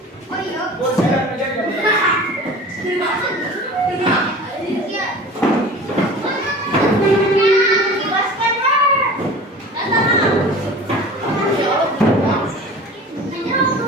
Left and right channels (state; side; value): normal; both; correlation 0.39